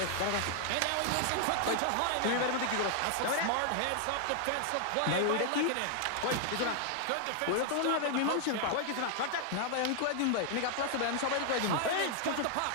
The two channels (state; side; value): different; both; correlation 0.00